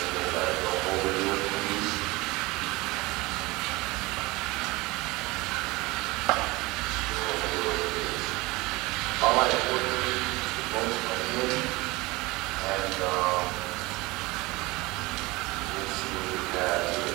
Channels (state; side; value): quieter; left; 22.4 dB